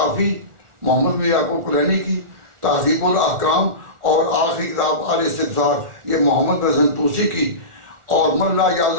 محمد بن یعقوب کلینی کی، تہذیب الاحکام اور آخری کتاب آل استدسار یہ محمد بن حسن توسی کی، اور من لا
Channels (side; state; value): left; late; 1.4 ms